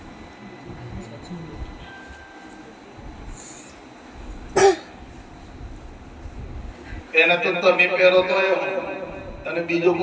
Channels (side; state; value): both; identical; correlation 1.00